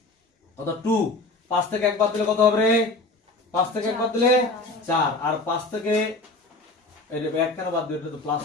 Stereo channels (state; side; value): quieter; right; 3.1 dB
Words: কত? 2, 5 থেকে 1 বাদ দিলে কত হবে রে? 5 থেকে 1 বাদ দিলে 4, আর 5 থেকে এটা 1 কেন বাদ দিলে? এটা তো প্লাস